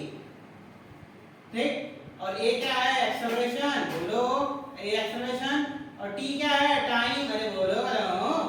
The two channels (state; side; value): identical; both; correlation 1.00